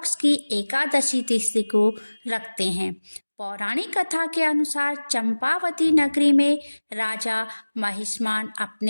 की एकादशी तिथि को रखते हैं। पौराणिक कथा के अनुसार चंपावती नगरी में राजा महिष्मान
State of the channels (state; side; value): inverted; both; correlation -1.00